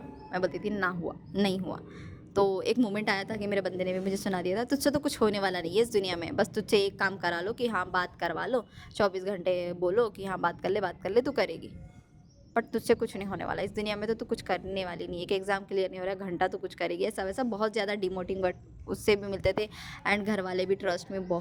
मैं बोलती थी ना हुआ, नहीं हुआ। तो एक मोमेंट आया था कि मेरे बंदे ने भी मुझे सुना दिया था, तुझसे तो कुछ होने वाला नहीं है इस दुनिया में, बस तुझसे एक काम करा लो कि हाँ बात करवा लो, 24 घंटे बोलो कि हाँ बात कर ले, तू करेगी, बट तुझसे कुछ नहीं होने वाला इस दुनिया में, तो तू कुछ करने वाली नहीं है। कि एग्ज़ाम क्लियर नहीं हो रहा है, घंटा तो कुछ करेगी, ऐसा वैसा बहुत ज़्यादा डिमोटिंग वर्ड उससे भी मिलते थे। एंड घर वाले भी ट्रस्ट में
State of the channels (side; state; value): both; identical; correlation 1.00